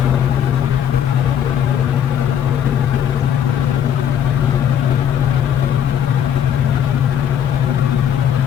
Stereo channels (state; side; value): quieter; right; 9.3 dB